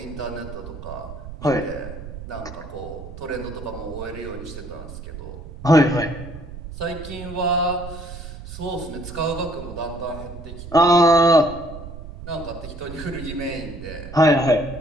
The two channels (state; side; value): noise; right; rumble, 12 dB below the sound